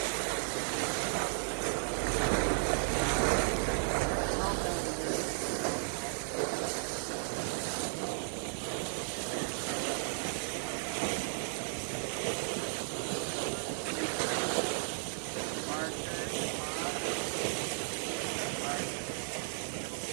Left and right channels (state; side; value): silent; left; digital silence